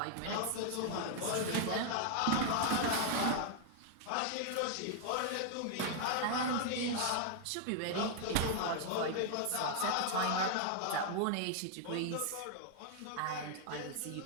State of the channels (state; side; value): different; both; correlation 0.00